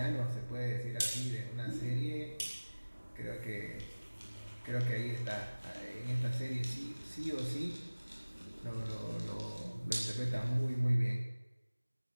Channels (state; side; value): inverted; both; correlation -1.00